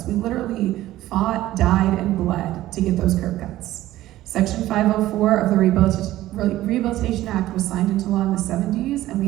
we literally fought, died, and bled to get those curb cuts. Section 504 of the Rehabilitation Act was signed into law in the 70s, and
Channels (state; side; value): quieter; left; 15.1 dB